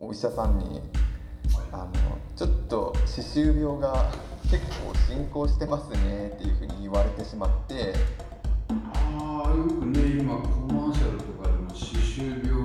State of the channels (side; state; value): both; identical; correlation 1.00